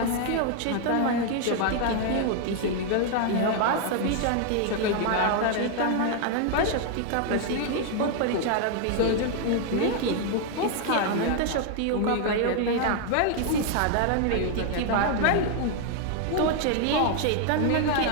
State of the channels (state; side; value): different; both; correlation 0.00